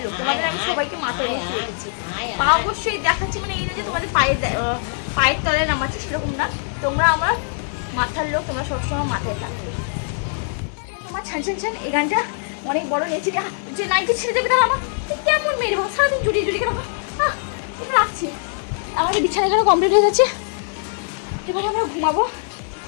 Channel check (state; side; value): silent; right; digital silence